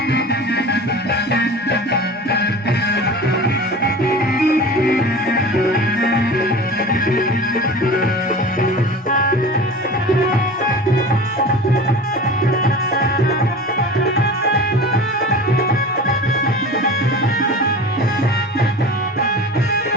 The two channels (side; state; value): both; normal; correlation 0.36